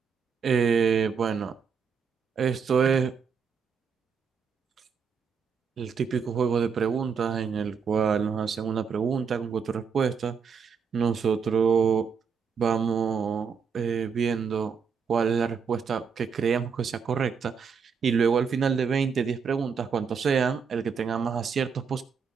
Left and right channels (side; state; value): left; quieter; 6.1 dB